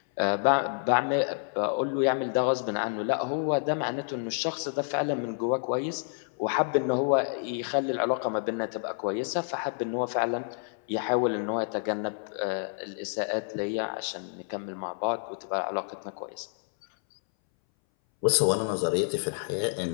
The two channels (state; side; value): silent; right; 59 dB below the other